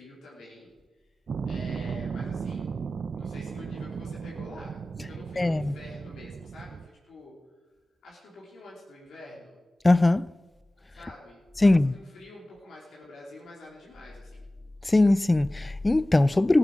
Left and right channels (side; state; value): both; normal; correlation 0.97